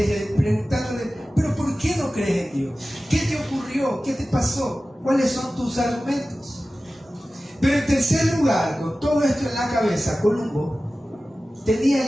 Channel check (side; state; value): both; normal; correlation 0.96